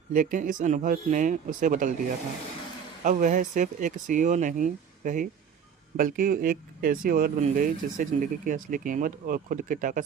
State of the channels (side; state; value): left; quieter; 7.3 dB